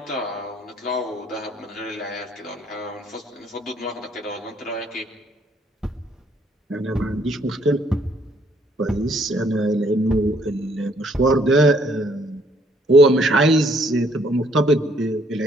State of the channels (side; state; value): both; normal; correlation 0.66